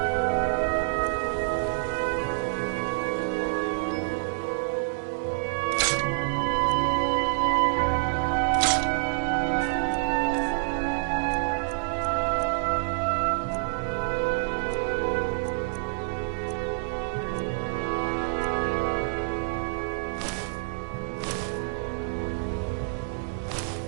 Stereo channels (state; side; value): silent; left; digital silence